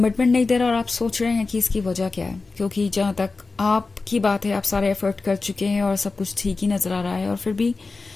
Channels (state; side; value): quieter; right; 3.9 dB